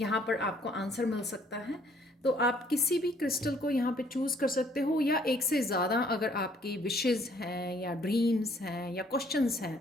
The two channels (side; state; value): both; normal; correlation 0.62